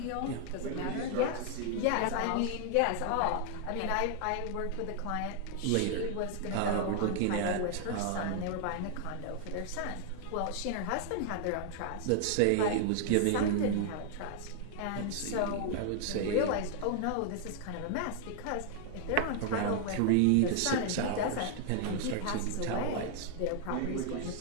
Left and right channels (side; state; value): both; different; correlation 0.00